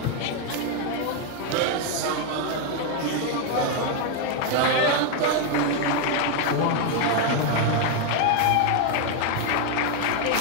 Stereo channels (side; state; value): both; different; correlation 0.01